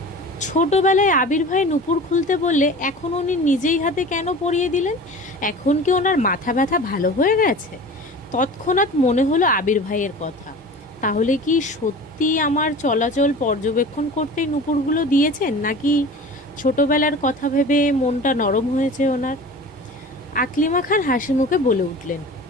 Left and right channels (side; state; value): both; normal; correlation 0.38